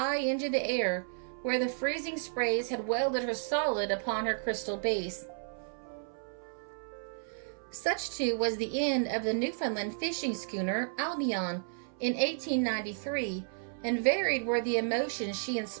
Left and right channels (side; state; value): left; silent; 56 dB below the other